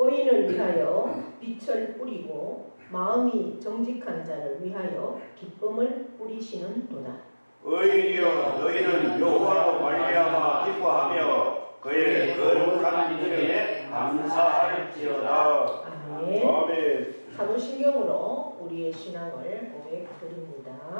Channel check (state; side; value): inverted; both; correlation -1.00